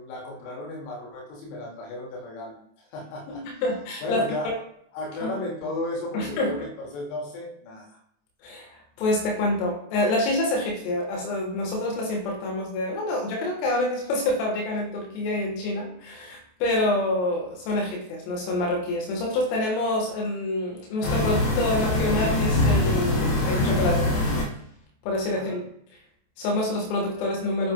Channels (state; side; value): late; right; 28 ms